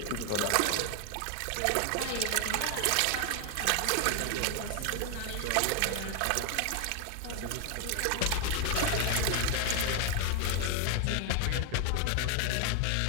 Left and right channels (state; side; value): different; both; correlation 0.00